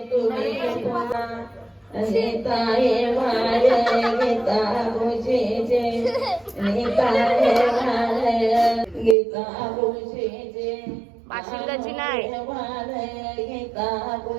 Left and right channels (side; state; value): left; drops out; at 9.2 s